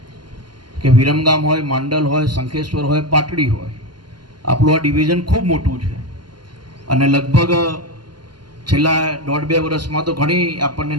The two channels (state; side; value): late; left; 0.71 ms